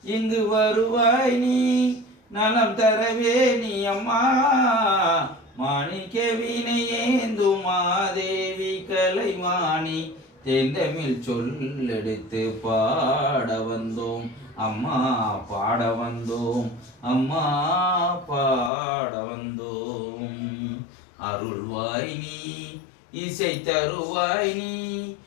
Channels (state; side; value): drops out; right; at 18.7 s